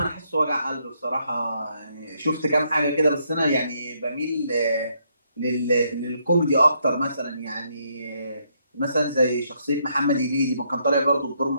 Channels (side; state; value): both; inverted; correlation -0.74